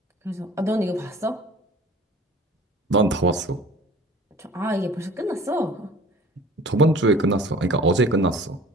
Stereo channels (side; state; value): both; normal; correlation 0.46